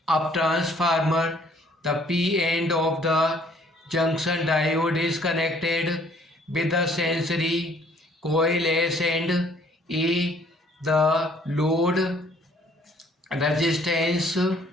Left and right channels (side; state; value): both; normal; correlation 0.60